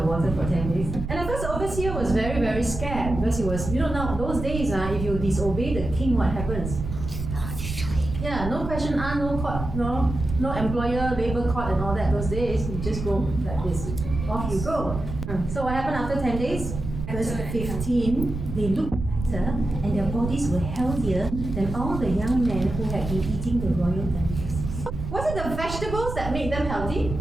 water for 10 days? And of course, the overseer was very, very scared because he was, now those days, if you disobey the king, what happens? Yeah, no question asked, no court, no employer, labor court and all that. Those days, you just go like this. Off you go. So what happened after 10 days? Verse 15, they looked better and their bodies were healthier than all the young men who had been eating the royal delicacies. Was it the vegetables that made them healthy?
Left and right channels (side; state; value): right; noise; rumble, 6 dB below the sound